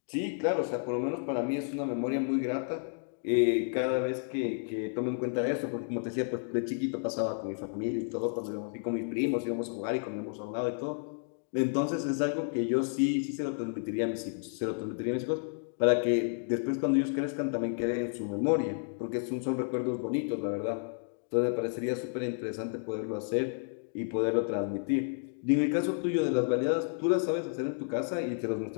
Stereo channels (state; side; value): silent; right; digital silence